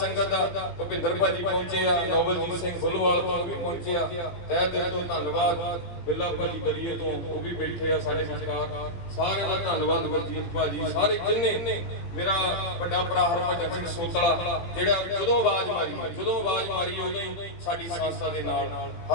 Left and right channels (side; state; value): right; late; 17 ms